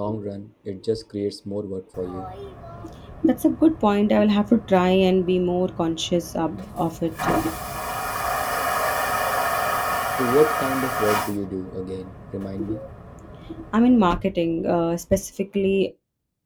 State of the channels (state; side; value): identical; both; correlation 1.00